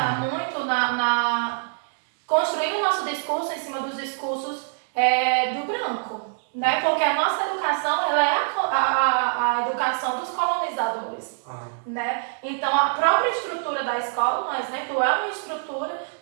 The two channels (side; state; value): left; silent; digital silence